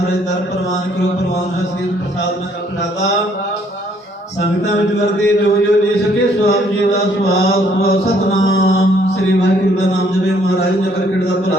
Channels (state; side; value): normal; both; correlation 0.65